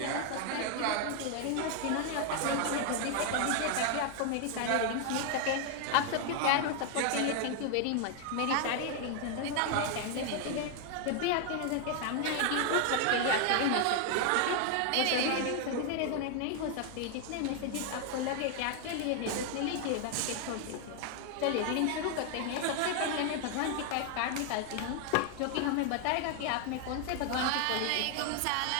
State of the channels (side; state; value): both; different; correlation 0.00